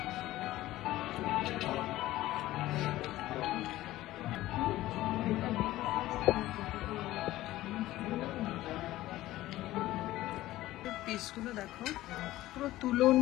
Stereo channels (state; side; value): quieter; right; 16.0 dB